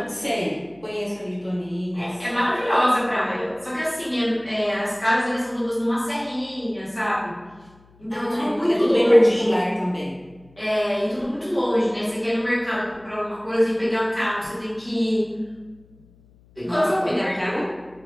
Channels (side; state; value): left; noise; hum, 28 dB below the sound